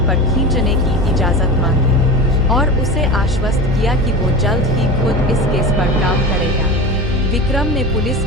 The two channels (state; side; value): normal; both; correlation 0.29